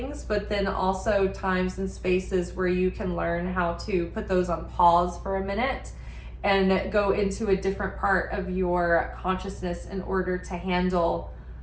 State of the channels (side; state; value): both; identical; correlation 1.00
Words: but then also times and spaces where you can learn how to put those on pause for a minute and go into a different part of your consciousness in order to handle